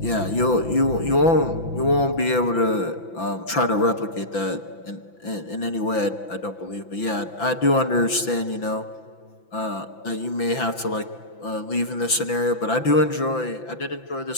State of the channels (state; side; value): late; right; 5.9 ms